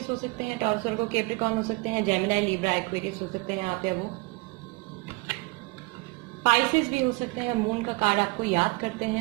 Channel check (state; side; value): quieter; left; 26.2 dB